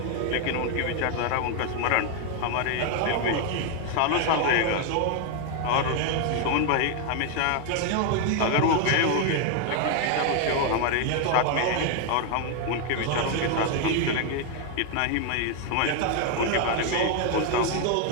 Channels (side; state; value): both; different; correlation 0.01